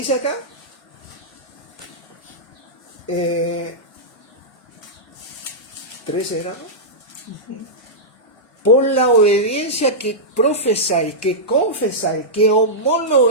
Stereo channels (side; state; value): both; normal; correlation -0.11